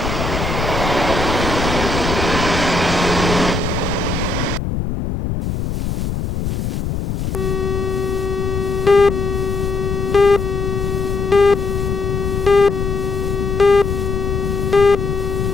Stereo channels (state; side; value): noise; left; rumble, 2 dB below the sound